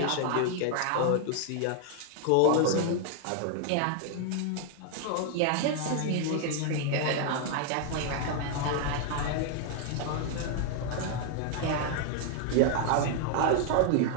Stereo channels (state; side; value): different; both; correlation 0.00